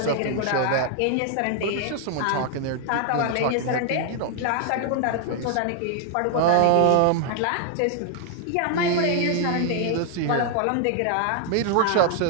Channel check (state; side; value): different; both; correlation 0.00